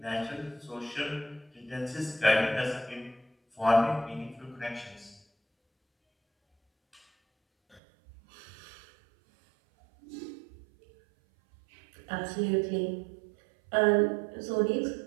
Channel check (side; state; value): left; drops out; at 7.8 s